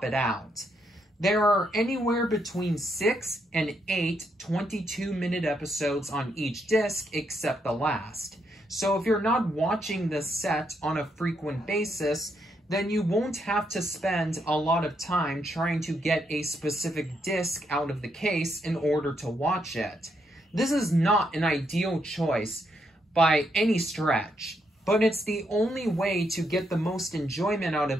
it out. There are anywhere between 6 and 8 22-minute episodes on each disc except the last. So if you're not watching this set on a frequent basis, then you won't have to spend a lot of time trying to get a specific disc out of the case in order to watch it. This is not an ideal choice by any stretch, but it's the only way to get the most enjoyment out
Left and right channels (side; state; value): both; normal; correlation 0.78